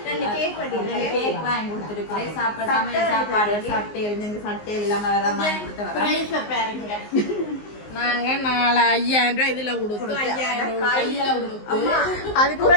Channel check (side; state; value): right; late; 19 ms